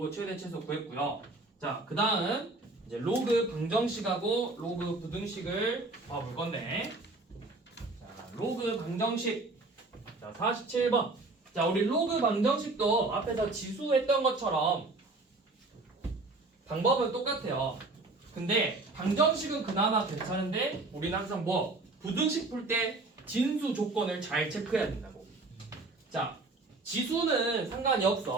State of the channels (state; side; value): quieter; left; 3.2 dB